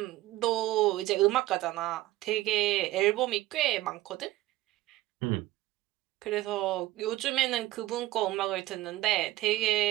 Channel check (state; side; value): quieter; left; 16.8 dB